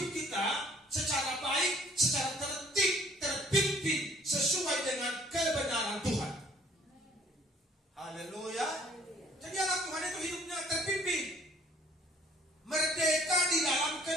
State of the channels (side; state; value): both; normal; correlation 0.59